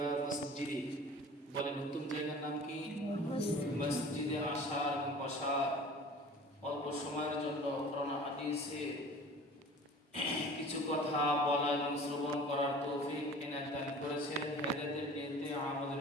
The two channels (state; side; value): normal; both; correlation 0.43